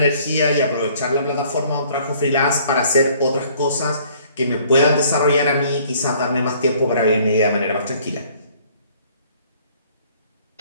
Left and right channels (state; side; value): inverted; both; correlation -0.58